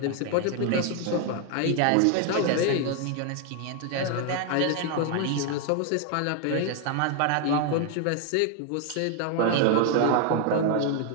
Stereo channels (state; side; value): different; both; correlation 0.01